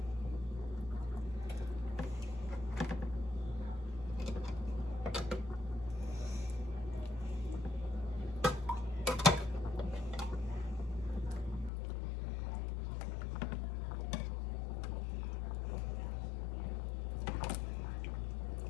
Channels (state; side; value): drops out; right; at 11.7 s